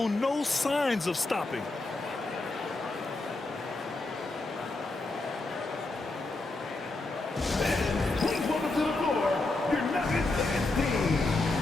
no signs of stopping. Welcome to the floor, your Nuggets team.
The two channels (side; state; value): right; quieter; 3.1 dB